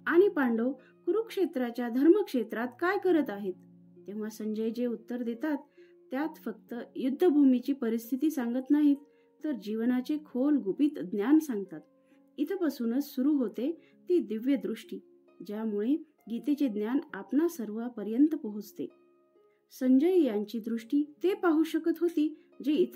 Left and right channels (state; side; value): identical; both; correlation 1.00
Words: आणि पांडव कुरुक्षेत्राच्या धर्मक्षेत्रात काय करत आहेत. तेव्हा संजय जे उत्तर देतात त्यात फक्त युद्धभूमीची परिस्थिती सांगत नाहीत, तर जीवनाचे खोल गुपित ज्ञान सांगतात. इथपासूनच सुरू होते ती दिव्य दृष्टी, ज्यामुळे गीतेचे ज्ञान आपणा सर्वांपर्यंत पोहोचते. संजय यांची दृष्टी ते पाहू शकत होती जे